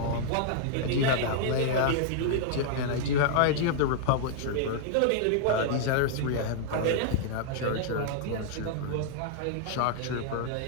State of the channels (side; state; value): both; different; correlation -0.01